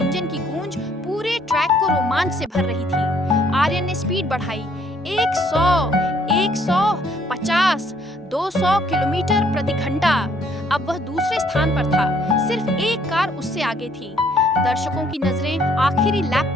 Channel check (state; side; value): normal; both; correlation 0.65